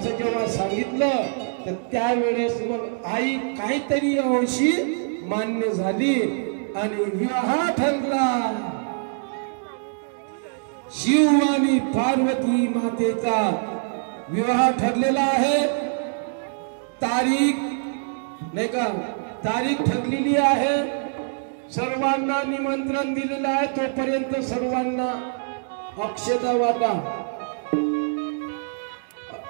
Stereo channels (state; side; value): silent; left; digital silence